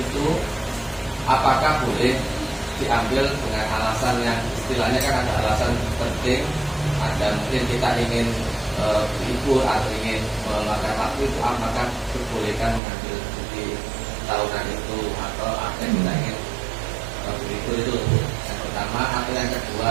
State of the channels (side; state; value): left; drops out; at 12.8 s